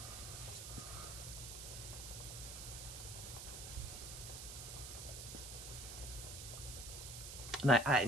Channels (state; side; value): noise; right; hiss, 8 dB below the sound